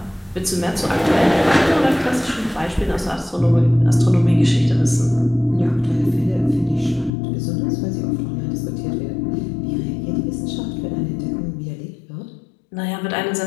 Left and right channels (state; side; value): drops out; right; at 7.1 s